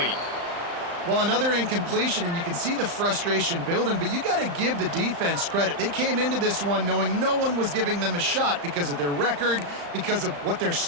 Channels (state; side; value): late; left; 35 ms